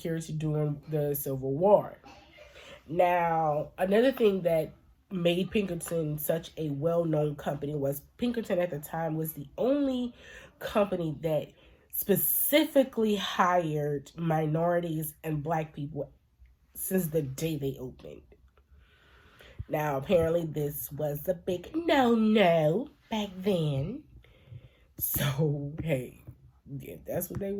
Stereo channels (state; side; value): identical; both; correlation 1.00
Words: during the Civil War. Now, another thing that made Pinkerton such a well-known company was Pinkerton at the time was the only company that specifically hired minorities and black people since the day they opened. Now, apparently this was a big no-no back then. So, hey, if that's what they